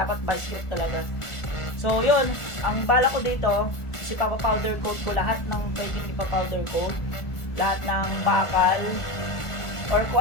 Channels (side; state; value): right; late; 1.4 ms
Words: vice grip talaga. So, yun, ang bala ko dito, ipapa-powder coat ko lahat ng pwedeng ipa-powder coat, lahat ng bakal or kung